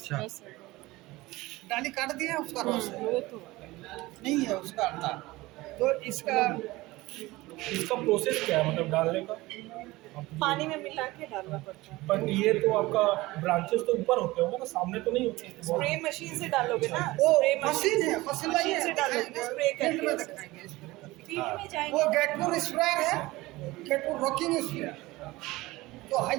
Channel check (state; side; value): quieter; left; 19.9 dB